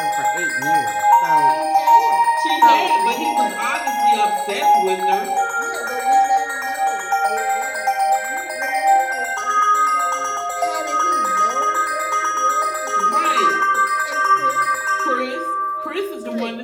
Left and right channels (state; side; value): identical; both; correlation 1.00